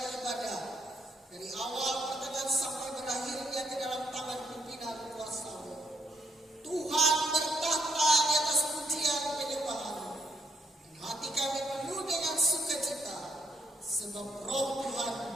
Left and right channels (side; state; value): both; normal; correlation 0.75